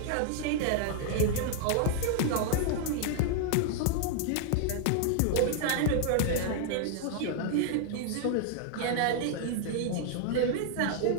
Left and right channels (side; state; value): both; different; correlation 0.00